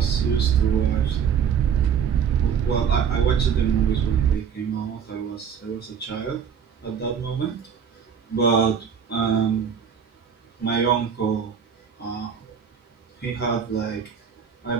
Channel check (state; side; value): quieter; left; 7.3 dB